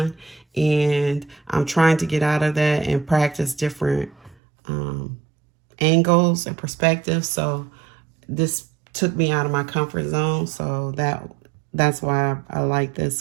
and I'm trying to get out of that and practice different angles and perspectives. So this took me out of my comfort zone. So that's why I like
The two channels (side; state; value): left; drops out; at 4.4 s